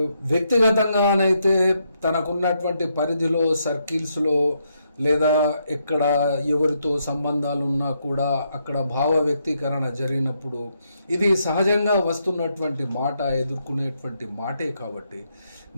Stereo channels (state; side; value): inverted; both; correlation -0.78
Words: వ్యక్తిగతంగానైతే తనకున్నటువంటి పరిధిలో, సర్కిల్స్లో, లేదా ఎక్కడ ఎవరితో సంబంధాలు ఉన్నా కూడా అక్కడ భావ వ్యక్తీకరణ జరిగినప్పుడు ఇది సహజంగా వస్తున్నటువంటి మాట, ఎదుర్కొనేటువంటి మాటే. కాబట్టి